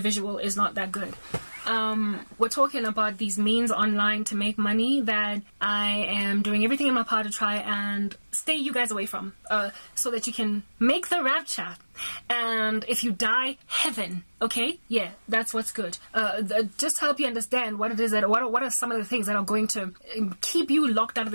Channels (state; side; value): inverted; both; correlation -1.00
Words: is not that good. We're talking about these means online to make money that I am doing everything in my power to try and stay you guys away from, so that you can make the rapture. And if you die, heaven. Okay, yeah, that's what's good. Just to help you understand what it is that what are some of the things that are going to keep you locked out of